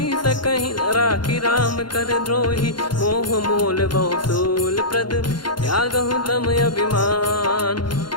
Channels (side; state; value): right; late; 0.71 ms